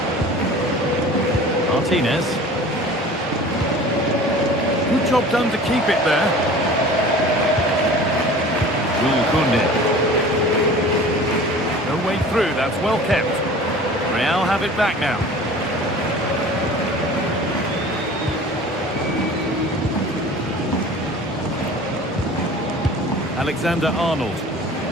Martinez. Good job done to keep it there. Koundé. No way through, that's well kept. Real have it back now. Alexander-Arnold.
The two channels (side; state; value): both; normal; correlation 0.42